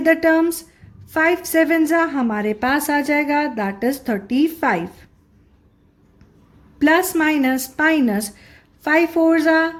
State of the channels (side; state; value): both; identical; correlation 1.00